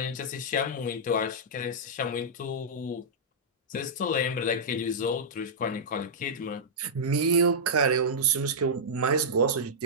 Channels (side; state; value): both; normal; correlation -0.11